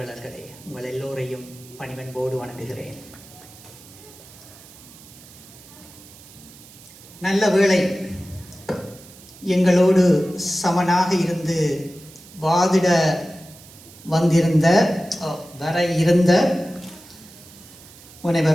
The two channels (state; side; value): noise; right; hiss, 21 dB below the sound